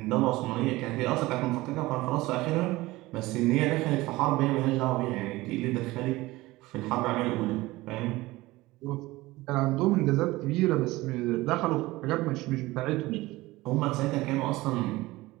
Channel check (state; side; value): quieter; left; 19.5 dB